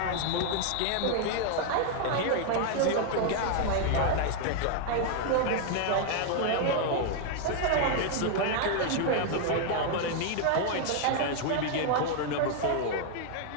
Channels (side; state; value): both; different; correlation 0.00